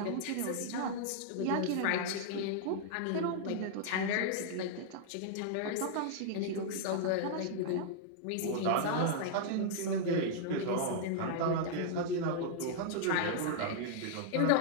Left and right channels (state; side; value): different; both; correlation -0.01